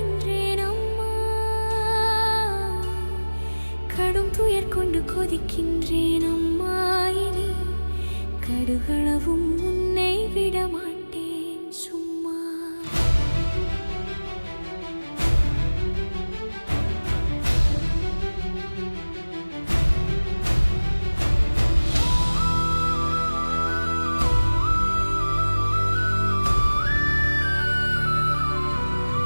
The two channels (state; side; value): inverted; both; correlation -1.00